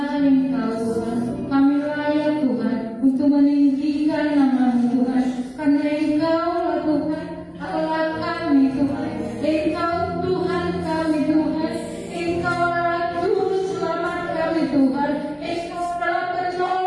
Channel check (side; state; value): both; identical; correlation 1.00